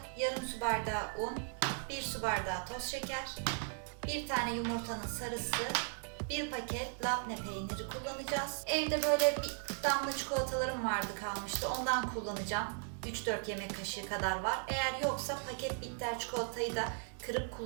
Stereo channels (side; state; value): left; silent; 53 dB below the other